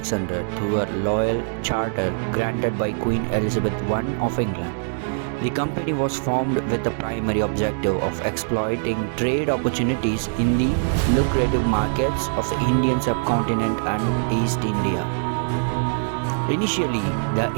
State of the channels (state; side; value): silent; left; digital silence